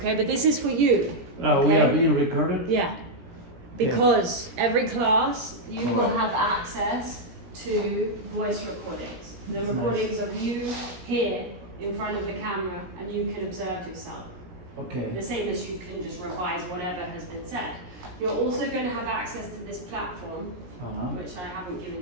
but this is for you. Okay? We are being recorded? Yeah. Because every class you will have access to voice recordings. The recordings of you here in front of the camera, and you can observe yourself. Okay. The same as you can just revise whatever has been said. You're also going to have access to this platform, which I haven't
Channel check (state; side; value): late; left; 17 ms